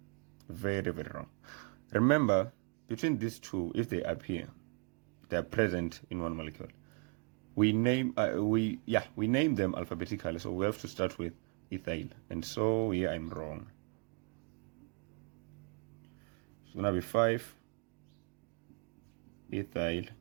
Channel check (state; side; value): quieter; left; 35.4 dB